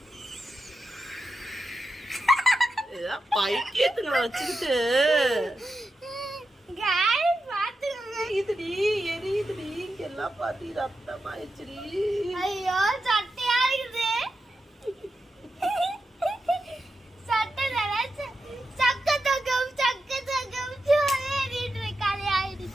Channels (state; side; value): normal; both; correlation 0.89